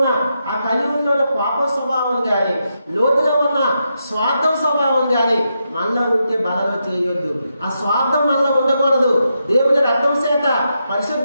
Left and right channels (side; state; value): both; inverted; correlation -0.84